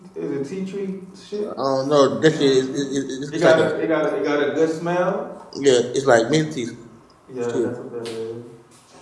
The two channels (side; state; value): both; identical; correlation 1.00